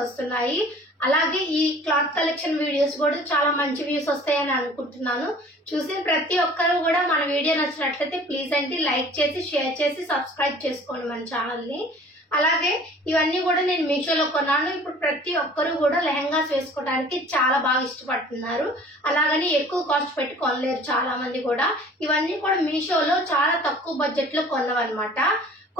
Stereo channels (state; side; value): normal; both; correlation 0.48